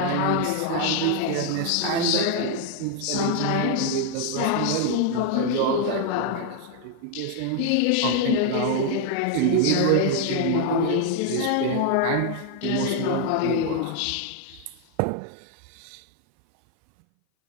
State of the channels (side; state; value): both; different; correlation 0.00